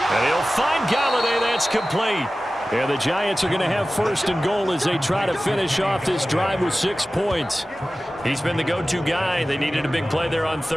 And he'll find Galladay. That's complete. And the Giants are going to have 1st and goal as they try to finish off this drive with 6 points. He's been the go-to guy. They needed a big play there on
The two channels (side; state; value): both; normal; correlation 0.96